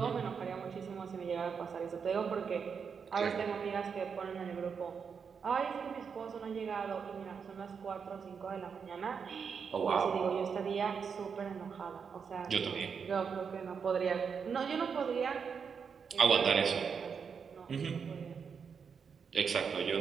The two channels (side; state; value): left; quieter; 6.3 dB